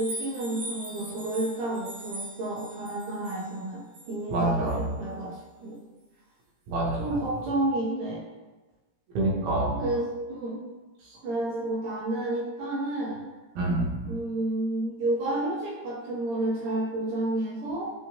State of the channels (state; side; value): late; left; 17 ms